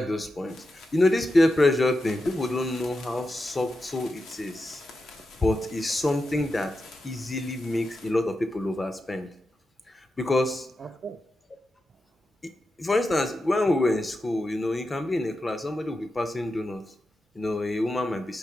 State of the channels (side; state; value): both; normal; correlation 0.89